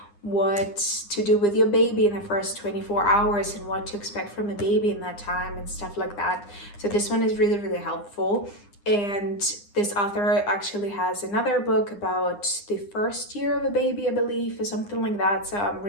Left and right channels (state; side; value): late; right; 9.8 ms